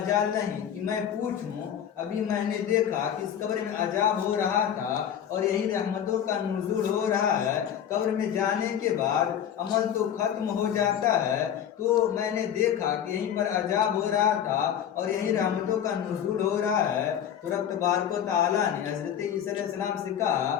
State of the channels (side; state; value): right; quieter; 9.5 dB